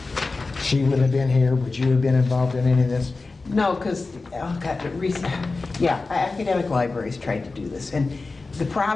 She wouldn't have been here. Would you have been involved in any of this? No, because, oh God, academic libraries tried to do this. And the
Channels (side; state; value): right; quieter; 3.7 dB